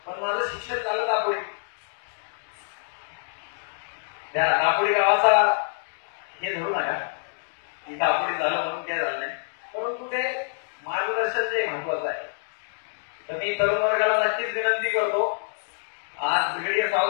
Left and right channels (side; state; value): right; silent; digital silence